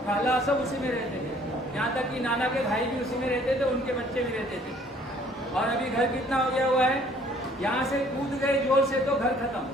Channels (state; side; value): normal; both; correlation 0.58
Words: खाला सब उसी में रहते थे। यहाँ तक कि नाना के भाई भी उसी में रहते थे, उनके बच्चे भी रहते थे। और अभी घर कितना हो गया हुआ है? यहाँ से कूद गए जोर से तो घर खत्म।